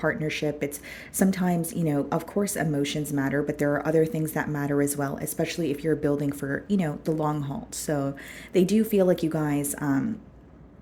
it's sometimes, of course, emotions matter, but there are other things that matter as well, especially if you're building for, the long haul. So they do feel like you guys,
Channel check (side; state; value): both; identical; correlation 1.00